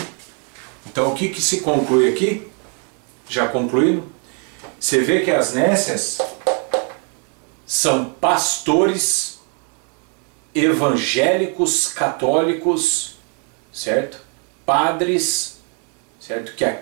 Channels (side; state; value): left; quieter; 39.7 dB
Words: Então o que se conclui aqui? Já concluindo? Você vê que as nécias são pastores evangélicos, católicos, certo? Padres, certo? Que